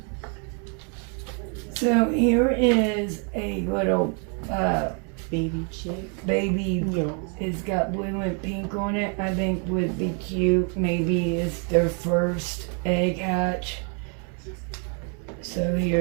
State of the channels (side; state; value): left; quieter; 39.7 dB